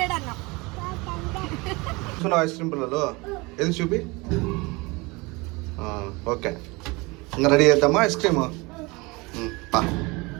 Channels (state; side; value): quieter; left; 25.2 dB